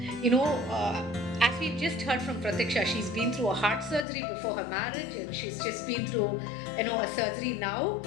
As we've just heard from Pratiksha, she's been through a heart surgery before her marriage, and she's just been through, a surgery now,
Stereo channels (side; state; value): right; drops out; at 4.0 s